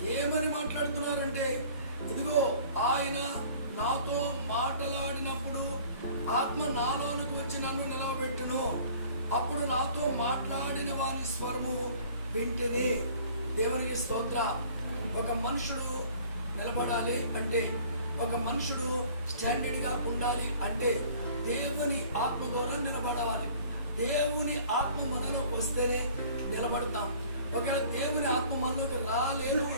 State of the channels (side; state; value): both; inverted; correlation -0.50